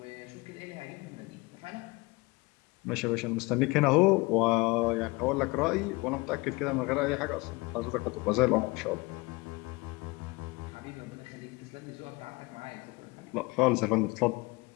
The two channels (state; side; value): quieter; right; 24.8 dB